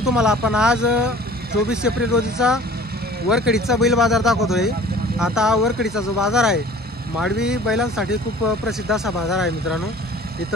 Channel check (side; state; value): both; normal; correlation 0.47